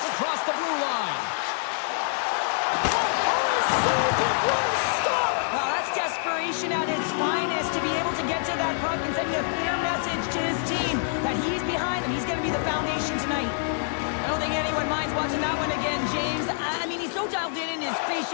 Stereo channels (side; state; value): right; silent; 61 dB below the other